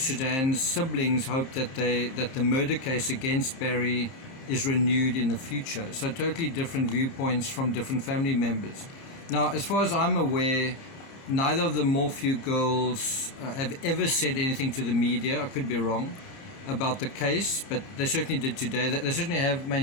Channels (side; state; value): right; late; 30 ms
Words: Suzanne's siblings hope that the murder case against Barry is renewed in the future. So totally different viewpoints from different family members. Now, as far as I'm aware, neither of the Morphew girls have ever said anything to the media. I could be wrong about the case, but they certainly did today. They certainly have